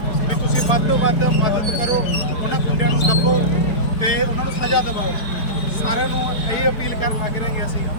ਵੀ ਤੁਸੀਂ ਵੱਧ ਤੋਂ ਵੱਧ ਮਦਦ ਕਰੋ, ਉਹਨਾਂ ਗੁੰਡਿਆਂ ਨੂੰ ਦੱਬੋ ਤੇ ਉਹਨਾਂ ਨੂੰ ਸਜ਼ਾ ਦਿਵਾਓ। ਸਾਰਿਆਂ ਨੂੰ ਇਹ ਅਪੀਲ ਕਰਨ ਲੱਗ ਰਹੇ ਹਾਂ ਅਸੀਂ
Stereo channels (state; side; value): late; right; 4.7 ms